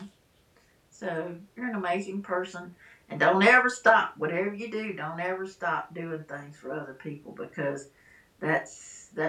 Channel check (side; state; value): both; identical; correlation 1.00